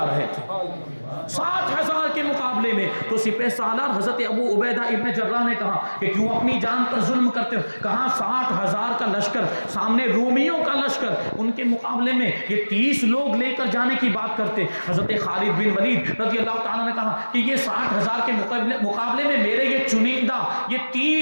رہے تھے، 60,000 کے مقابلے میں، تو سپہ سالار حضرت ابو عبیدہ ابن جراح نے کہا کہ کیوں اپنی جان پر ظلم کرتے ہو؟ کہا 60,000 کا لشکر سامنے رومیوں کا لشکر، ان کے مقابلے میں یہ 30 لوگ لے کر جانے کی بات کرتے۔ حضرت خالد بن ولید رضی اللہ تعالیٰ نے کہا کہ یہ 60,000 کے مقابلے میں میرے یہ چنندہ یہ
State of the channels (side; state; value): both; inverted; correlation -1.00